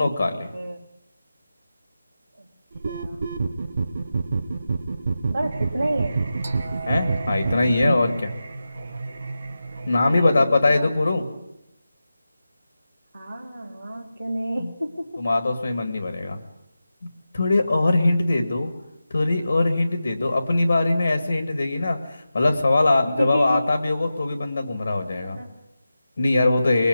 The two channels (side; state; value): both; inverted; correlation -0.93